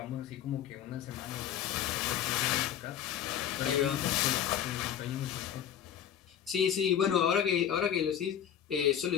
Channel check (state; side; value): quieter; right; 9.7 dB